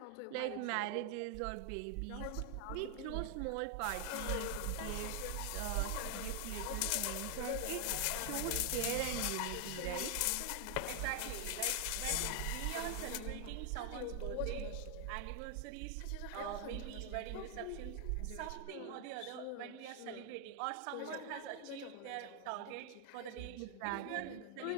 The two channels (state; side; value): different; both; correlation 0.00